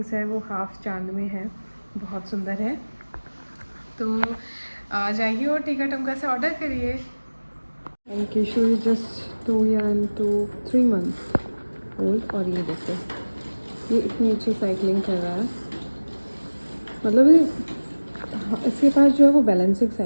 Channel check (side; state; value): both; inverted; correlation -1.00